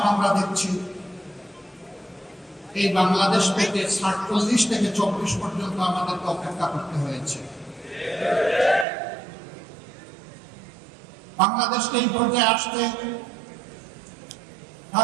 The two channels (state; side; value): drops out; left; at 8.8 s